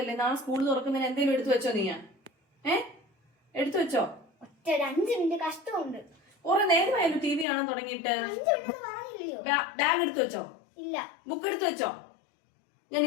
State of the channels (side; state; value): right; drops out; at 7.5 s